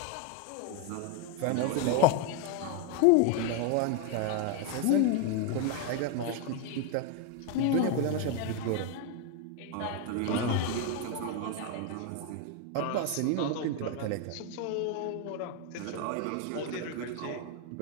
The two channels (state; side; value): different; both; correlation 0.01